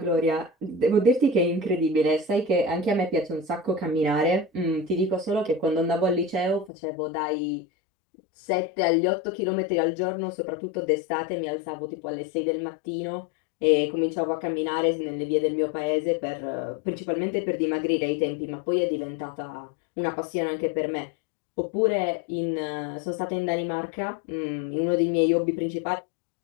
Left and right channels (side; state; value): right; drops out; at 6.7 s